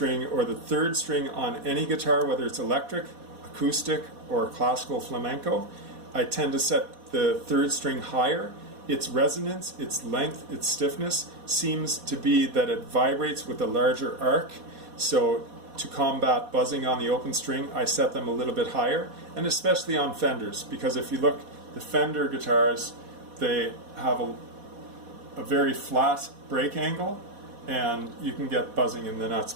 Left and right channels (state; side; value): late; left; 4.1 ms